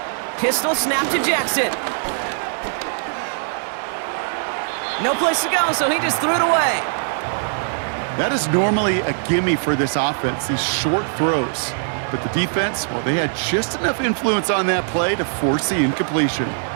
Pistol snap to Jackson. No place to go, so he just threw it away. That is normally a gimme for this offense, these short throws. But the defense, well, they had just enough influence on that play to force the incompletion.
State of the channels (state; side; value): silent; left; 60 dB below the other